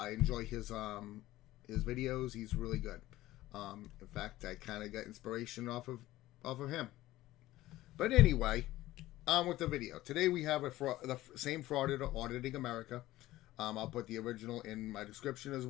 enjoy his videos. He's really good. In fact, I kind of got inspiration off of him. But anyway, on with the video. Today we have the same frauditor auditing America. I'll put the original in my description as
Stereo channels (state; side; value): quieter; right; 16.3 dB